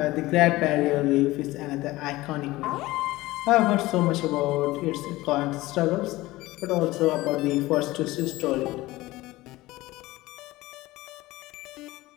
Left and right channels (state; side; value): quieter; right; 18.7 dB